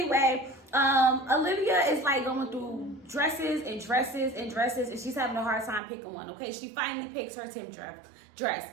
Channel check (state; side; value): drops out; left; at 5.8 s